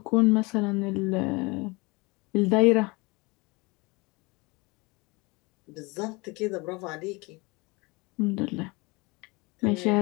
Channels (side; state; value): right; quieter; 26.0 dB